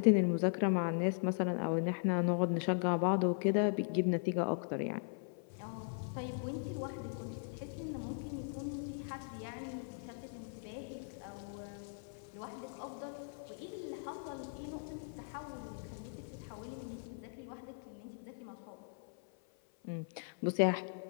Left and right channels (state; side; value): silent; right; 52 dB below the other